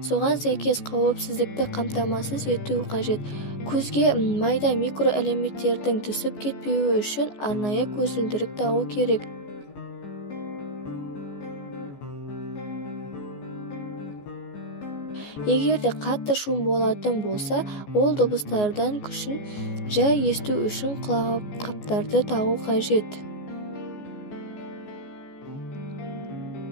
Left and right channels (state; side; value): late; right; 14 ms